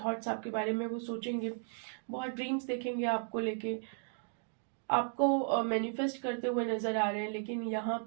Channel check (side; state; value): left; silent; 54 dB below the other